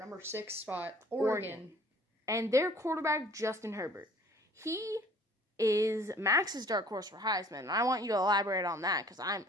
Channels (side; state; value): both; normal; correlation 0.54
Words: 6 spot, Oregon. And their quarterback, Justin Herbert. He is Max's dark horse for Heisman, and I want you to elaborate on that because